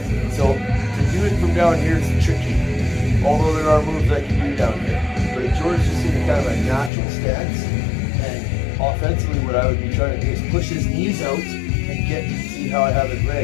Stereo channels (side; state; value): right; drops out; at 6.9 s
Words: So to do it from down here is tricky. Although there are moves I can do down here. But if George's just in a kind of a natural stance, and offensively what I would be trying to do is push his knees out and get, see how I have his